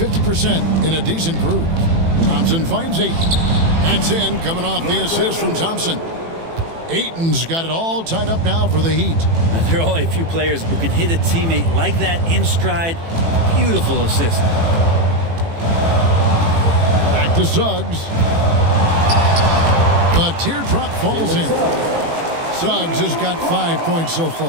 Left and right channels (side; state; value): left; late; 18 ms